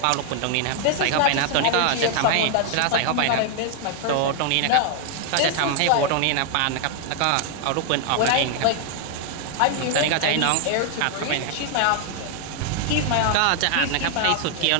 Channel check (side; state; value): both; different; correlation 0.00